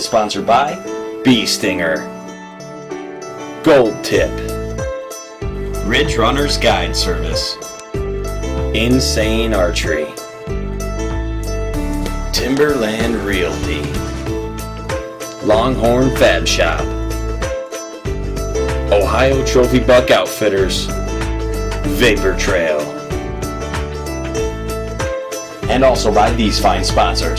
sponsored by Bee Stinger, Gold Tip, Ridge Runner's Guide Service, Insane Archery, Timberland Realty, Longhorn Fab Shop, Ohio Trophy Buck Outfitters, Vapor Trail, and also by these fine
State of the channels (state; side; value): identical; both; correlation 1.00